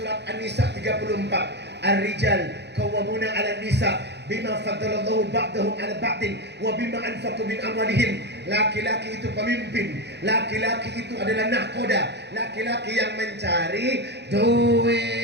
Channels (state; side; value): late; left; 0.50 ms